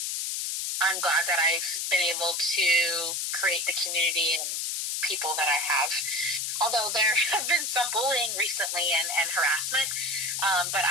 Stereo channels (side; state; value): left; noise; hiss, 1 dB below the sound